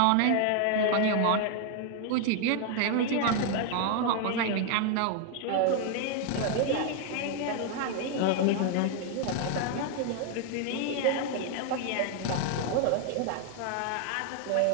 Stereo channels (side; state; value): both; different; correlation 0.00